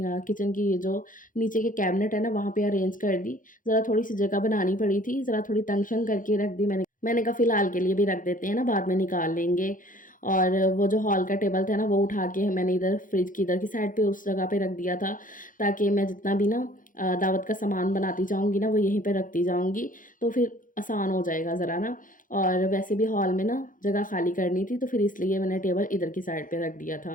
किचन की ये जो नीचे के कैबिनेट है ना, वहाँ पे अरेंज कर दी। ज़रा थोड़ी-सी जगह बनानी पड़ी थी, ज़रा थोड़ी तंग-शंग करके रख दी मैंने। मैंने कहा फ़िलहाल के लिए भी रख देते हैं ना, बाद में निकाल लेंगे। और वो जो हॉल का टेबल था ना, वो उठा के मैंने इधर फ्रिज की इधर की साइड पे उस जगह पे रख दिया था, ताकि मैं जितना भी ना दावत का सामान बनाती जाऊँगी ना, वो यहीं पे रखती जाऊँगी, तो फिर आसान हो जाएगा ज़रा ना। और वैसे भी हॉल में ना जगह खाली करनी थी, तो फिर इसलिए मैंने टेबल इधर की साइड पे रख दिया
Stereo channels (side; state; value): right; late; 0.39 ms